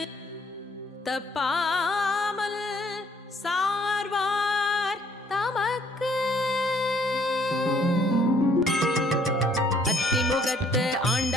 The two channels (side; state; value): both; normal; correlation 0.63